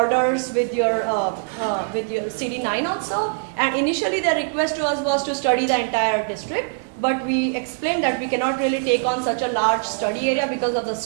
with your cb9 also. And initially, the request to us was to study the entire district. But we explained that we cannot really take on such a large study area because of the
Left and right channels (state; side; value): silent; left; 64 dB below the other